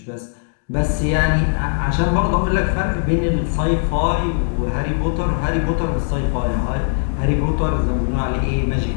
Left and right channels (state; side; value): silent; right; digital silence